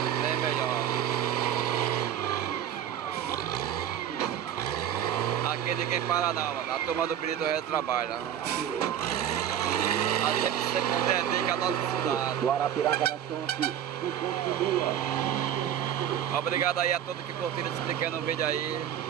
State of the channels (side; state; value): left; quieter; 10.0 dB